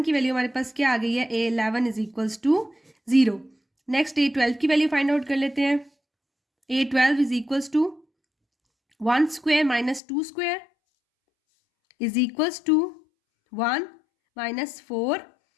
की वैल्यू हमारे पास क्या आ गई है, A11 is equals to 0। Next A12 की वैल्यू फाइंड आउट कर लेते हैं। A12 is equals to 1 square minus 2 square is equals to 1 minus 4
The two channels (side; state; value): right; drops out; at 10.0 s